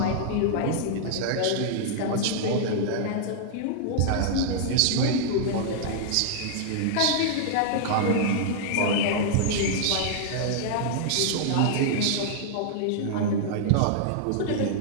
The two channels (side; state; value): both; different; correlation -0.01